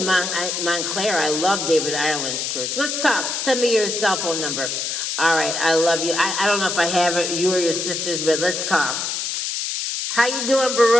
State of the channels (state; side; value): noise; left; hiss, 2 dB below the sound